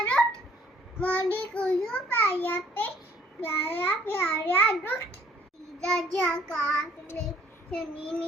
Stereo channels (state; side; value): normal; both; correlation 0.59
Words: रोट मुंडी को जो पाया पे प्यारा प्यारा रोट राजा काटले शनि